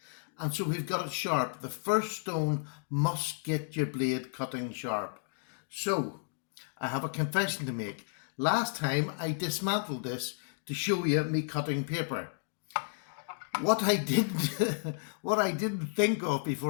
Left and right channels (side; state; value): right; silent; digital silence